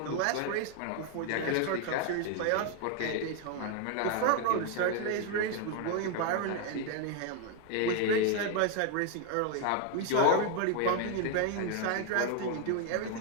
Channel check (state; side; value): different; both; correlation 0.01